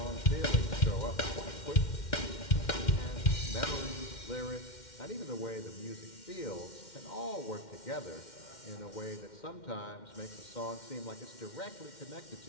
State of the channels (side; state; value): right; late; 2.1 ms